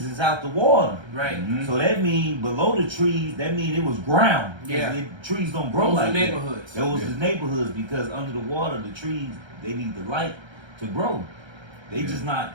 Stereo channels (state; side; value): late; left; 1.3 ms